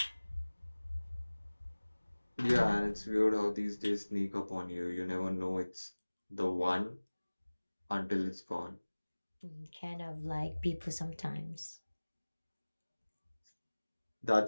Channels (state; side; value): inverted; both; correlation -1.00